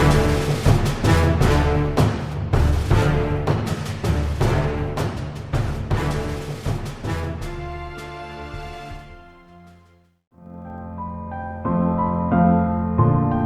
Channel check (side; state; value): both; identical; correlation 1.00